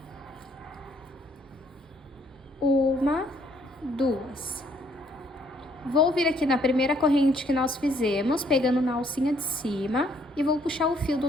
Uma, 2. Vou vir aqui na primeira corrente que nós fizemos, pegando na alcinha de cima, e vou puxar o fio do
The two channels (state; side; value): normal; both; correlation 0.66